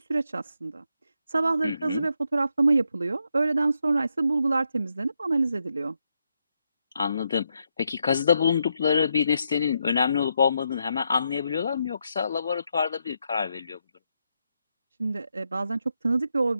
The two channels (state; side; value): inverted; both; correlation -0.81